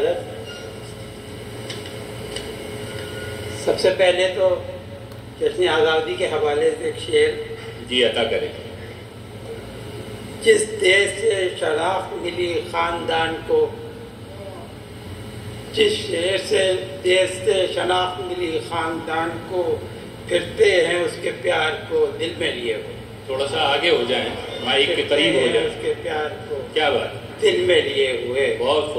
سب سے پہلے تو جشن آزادی کے حوالے سے ایک شعر جی عطا کریں. جس دیش سے شناخت ملی خاندان کو، جس شہر سے دیش سے شناخت ملی خاندان کو، پھرتے ہیں اس کے پیار کو دل میں لیے ہوئے. تھوڑا سا آگے ہو جائیں، مائک کے قریب ہو جائیں. اس کے پیار کو کیا بات، دل میں لیے ہوئے. بہت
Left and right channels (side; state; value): both; identical; correlation 1.00